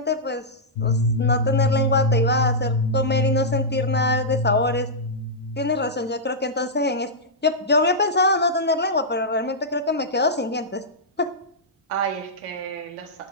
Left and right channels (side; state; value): both; normal; correlation -0.11